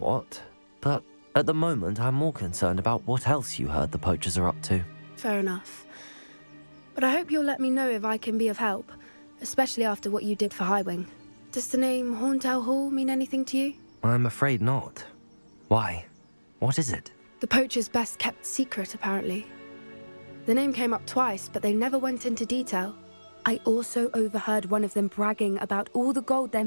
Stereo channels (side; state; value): both; inverted; correlation -1.00